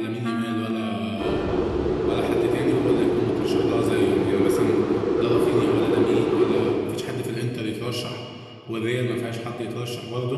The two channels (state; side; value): identical; both; correlation 1.00